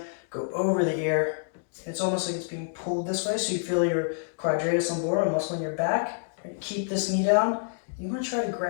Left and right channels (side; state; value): right; silent; digital silence